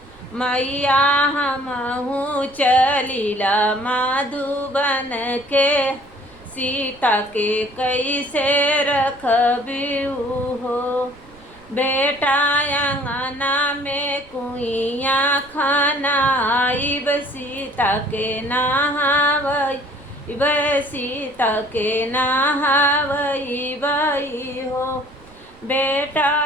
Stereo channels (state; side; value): noise; right; rumble, 25 dB below the sound